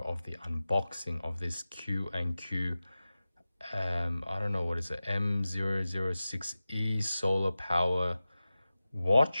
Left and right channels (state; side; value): inverted; both; correlation -0.96